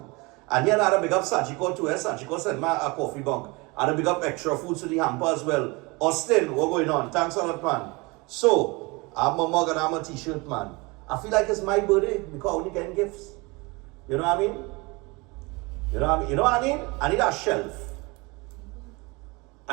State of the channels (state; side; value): quieter; left; 26.1 dB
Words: And here I had a big up Sachiko too. Sachiko sent me a coffee bunk. I had a big up extra food to the hamper as well. Austin, what's going on? Thanks a lot, man. So, I'm a mug and I'm a t-shirt, man. I feel like it's my birthday because I only getting gifts. You know what I mean? You know what I mean? I need a